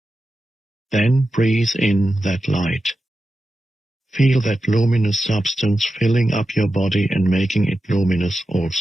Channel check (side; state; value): both; normal; correlation 0.91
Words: Then breathe in that light. Feel that luminous substance filling up your body and making it luminous